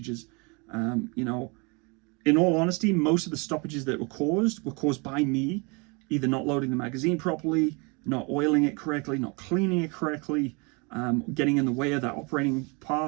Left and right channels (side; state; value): left; quieter; 30.7 dB